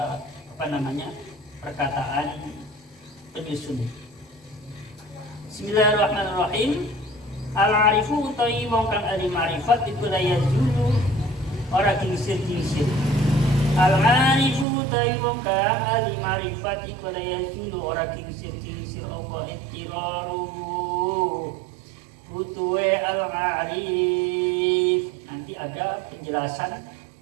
perkataan penyusun. Bismillahirrahmanirrahim. Al-arifu utawi wong kang ahli ma'rifat iku la yazulu ora kingsir-kingsir. Al-arifu utawi wong kang ahli ma'rifat iku la yazulu ora kingsir-kingsir apa ittiraru butuhe al-arif. Nanti ada penjelasan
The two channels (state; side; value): drops out; left; at 14.7 s